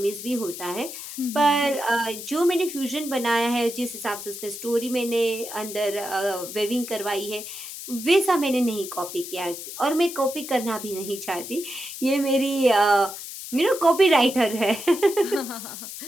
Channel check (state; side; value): noise; left; hiss, 10 dB below the sound